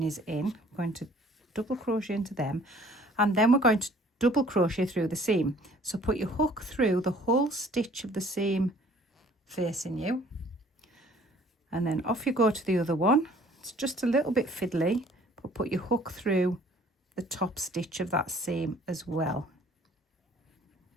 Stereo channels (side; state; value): both; normal; correlation 0.55